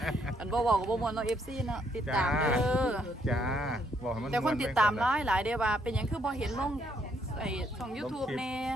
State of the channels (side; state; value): both; normal; correlation 0.72